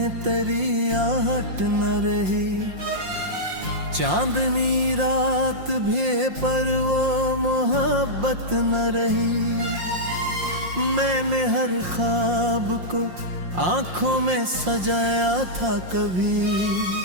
तेरी आहट न रही। चांदनी रात भी पर वो मोहब्बत न रही। मैंने हर ख्वाब को आंखों में सजाया था कभी,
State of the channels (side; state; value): left; late; 5.6 ms